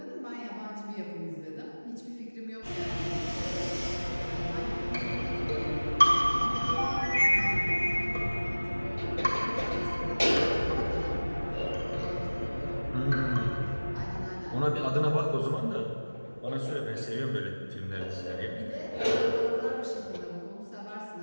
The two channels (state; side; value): inverted; both; correlation -1.00